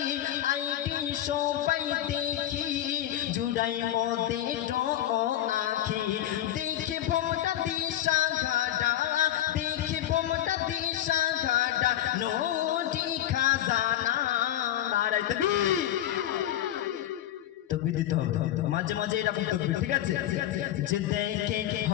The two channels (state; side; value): quieter; right; 12.3 dB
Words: আইডি সবাই দেখি চুরাই মতে তো আখি দেখে ভোমটা দিশা ঘাটা দেখে ভোমটা দিশা ঘাটা নদী খাজানা নারায়ে তাকবীর তাকবীর দিতে হবে মাঝে মাঝে এরকম তাকবীর ঠিক আছে যে দেখে